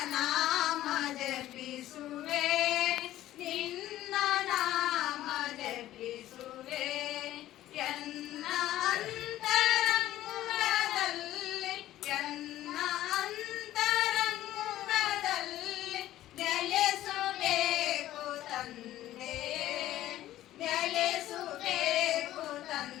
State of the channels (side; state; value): right; quieter; 14.1 dB